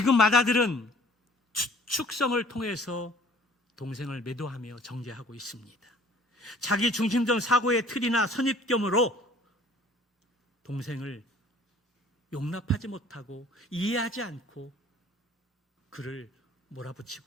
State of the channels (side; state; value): both; normal; correlation 0.53